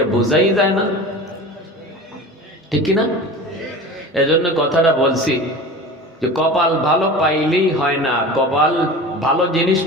বোঝাই যায় না, ঠিক না? এজন্য কথাটা বলছি যে কপাল ভালো পাইলেই হয় না, কপাল ভালো জিনিস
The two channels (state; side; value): normal; both; correlation 0.34